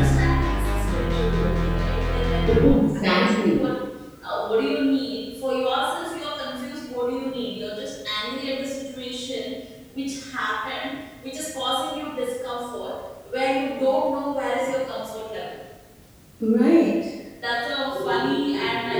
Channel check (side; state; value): both; identical; correlation 1.00